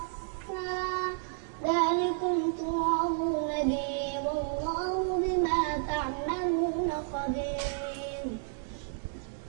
ذلكم توعظون به والله بما تعملون خبير.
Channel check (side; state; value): left; silent; digital silence